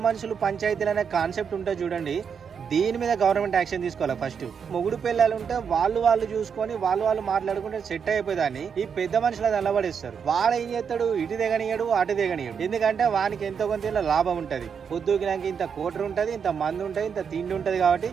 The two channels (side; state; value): left; quieter; 6.8 dB